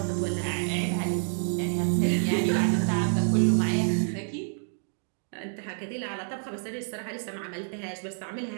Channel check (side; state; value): left; silent; digital silence